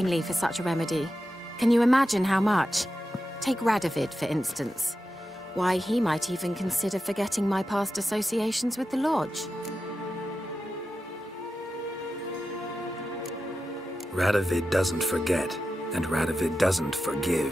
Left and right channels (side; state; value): both; normal; correlation 0.91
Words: for such a remedy. Can you imagine how much? Take Radovid, for instance. Why, he might even consider forgetting my past associations with the Lodge. Radovid doesn't forget, and Radovid doesn't